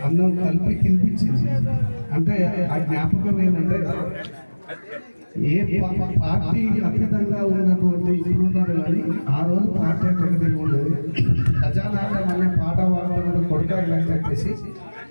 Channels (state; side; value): inverted; both; correlation -1.00